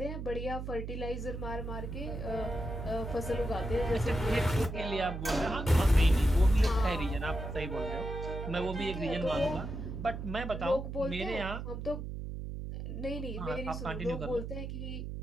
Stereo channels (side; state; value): right; noise; hum, 6 dB below the sound